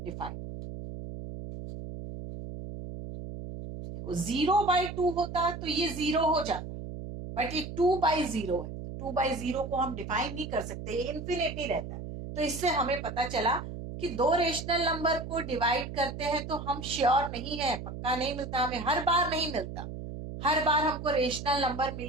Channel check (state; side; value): noise; right; hum, 9 dB below the sound